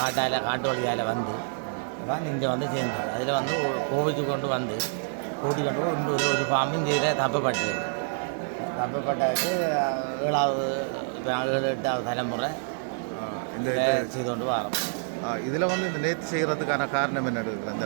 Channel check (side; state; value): left; silent; 60 dB below the other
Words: வழியால் வந்து தான் இங்கே வந்து சேர்ந்தது. அதில் வந்து கோவிச்சு கொண்டு வந்து கூட்டி கொண்டு இன்னொரு ஒரு பாம்பு இங்கே தப்பப்பட்டது. தப்பப்பட்டதுக்கு 7வது 8வது தலைமுறை இந்த செய்து கொண்டு வரோம். இதில் வந்து இந்த நேர்த்தி செய்கிறதுக்கான காரணம் என்ன இருக்குது அந்த